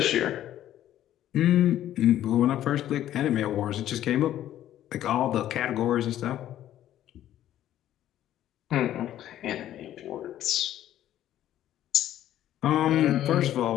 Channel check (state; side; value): quieter; right; 12.3 dB